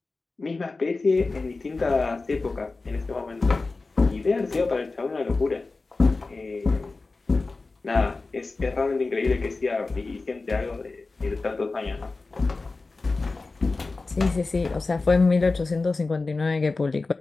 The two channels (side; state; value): right; quieter; 3.7 dB